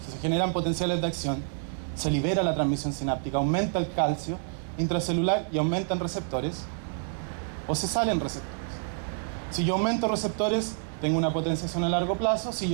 generan potenciales de acción, se libera la transmisión sináptica, aumenta el calcio intracelular y aumentan receptores, o se salen receptores. Si yo aumento receptores, tengo una potenciación a largo plazo. Si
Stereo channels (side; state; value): left; silent; digital silence